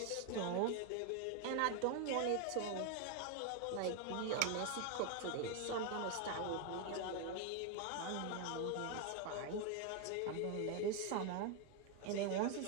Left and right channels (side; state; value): both; different; correlation 0.01